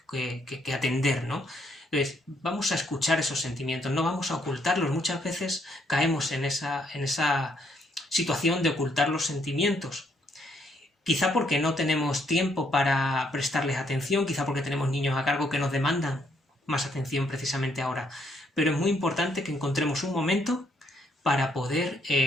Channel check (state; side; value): normal; both; correlation 0.71